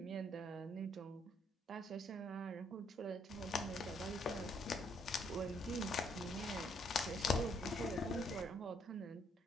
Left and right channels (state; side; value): normal; both; correlation 0.69